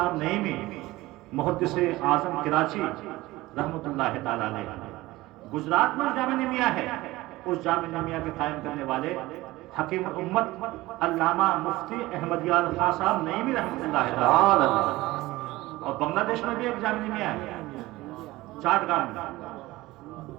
نعیمی محدث اعظم کراچی رحمۃ اللہ تعالی علیہ. گجرات میں جامعہ نمیہ ہے, اس جامعہ نمیہ کے قائم کرنے والے حکیم امت علامہ مفتی احمد یار خان صاحب نعیمی رحمۃ اللہ تعالی. اور بنگلہ دیش میں بھی ایک جامعہ نمیہ ہے چاٹگام میں,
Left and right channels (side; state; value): left; quieter; 18.8 dB